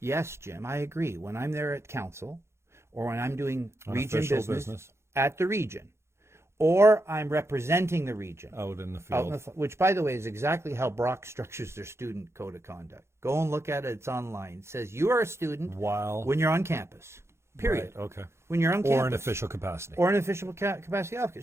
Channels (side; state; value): left; late; 0.13 ms